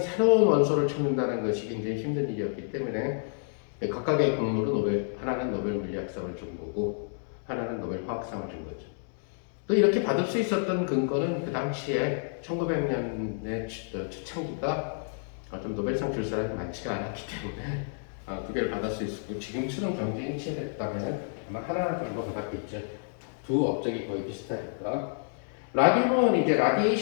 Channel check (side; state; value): right; silent; digital silence